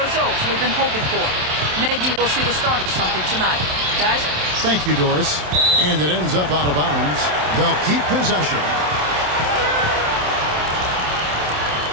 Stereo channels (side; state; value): left; late; 27 ms